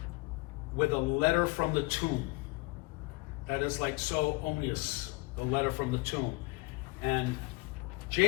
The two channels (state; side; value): quieter; right; 24.4 dB